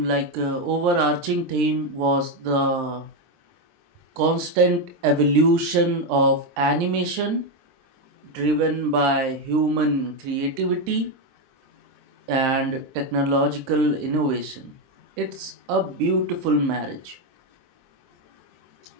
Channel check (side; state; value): left; late; 23 ms